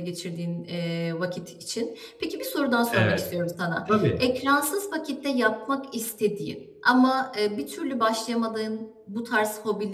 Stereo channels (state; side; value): identical; both; correlation 1.00